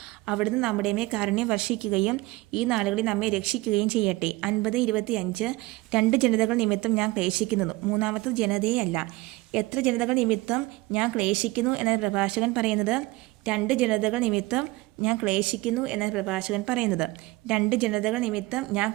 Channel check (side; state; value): left; quieter; 21.1 dB